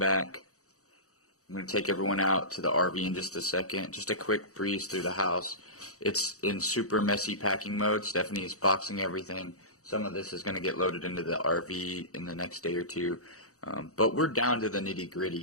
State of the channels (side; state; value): right; late; 0.65 ms